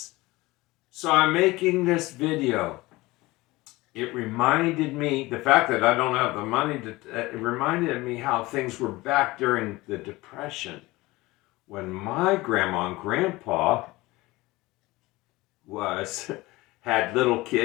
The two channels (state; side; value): quieter; right; 20.5 dB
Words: So I'm making this video. It reminded me, the fact that I don't have the money it reminded me how things were back during the Depression when my grandma and grandpa was had little